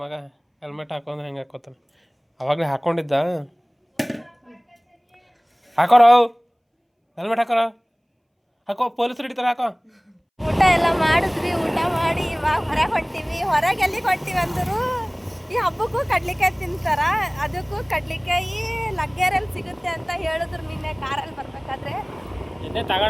ಮಗ ಹೆಲ್ಮೆಟ್ ಹಾಕೊಂಡ್ರೆ ಹೆಂಗೆ ಹಾಕೋತಾನೆ. ಅವಾಗಲೇ ಹಾಕ್ಕೊಂಡಿದ್ದ. ಹಾಕೋರ ಹೆಲ್ಮೆಟ್ ಹಾಕೋರ. ಹಾಕೋ, ಪೊಲೀಸರು ಹಿಡಿತಾರೆ. ಹಾಕೋ. ಊಟ ಎಲ್ಲ ಮಾಡಿದ್ವಿ. ಊಟ ಮಾಡಿ ಇವಾಗ ಹೊರಗೆ ಹೊಂಟೀವಿ. ಹೊರಗೆ ಎಲ್ಲಿಗೆ ಹೊಂಟೀವಿ ಅಂದರು, ಈ ಹಬ್ಬಕ್ಕೂ ಕಡ್ಲಿಕಾಯಿ ತಿಂತಾರ, ಅದಕ್ಕೂ ಕಡ್ಲಿಕಾಯಿ ಲಗ್ಗೆರಲ್ಲಿ ಸಿಗುತ್ತೆ ಅಂತ ಹೇಳಿದ್ರು ನಿನ್ನೆ ಕಾರಲ್ಲಿ ಬರ್ಬೇಕಾದ್ರೆ. ನಿನ್ನೆ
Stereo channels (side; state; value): both; identical; correlation 1.00